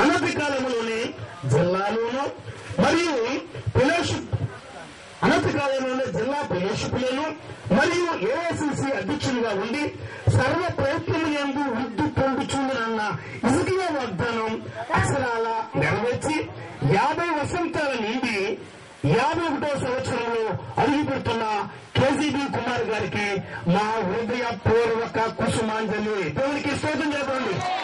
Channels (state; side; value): identical; both; correlation 1.00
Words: అనతి కాలంలోనే జిల్లాలోనూ మరియు ఫెలోషిప్ అనతి కాలంలోనే జిల్లా ఫెలోషిప్లను మరియు ఏఐసిసి అధ్యక్షునిగా ఉండి సర్వ ప్రయత్నము యందు వృద్ధి పొందుచుందనన్న ఇసుకీయ వాగ్దానం అక్షరాల నెరవేర్చి 50 వసంతాల నుండి 51వ సంవత్సరంలో అడుగుపెడుతున్న కేజీబీ కుమార్ గారికి మా హృదయపూర్వక కుసుమాంజలి. దేవునికి స్తోత్రం చెప్పండి.